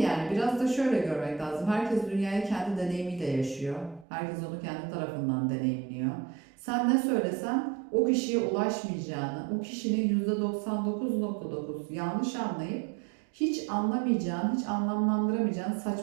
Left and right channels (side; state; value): left; drops out; at 4.0 s